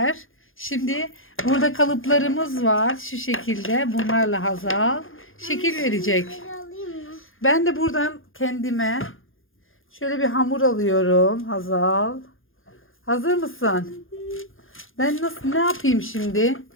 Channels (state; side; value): late; right; 0.59 ms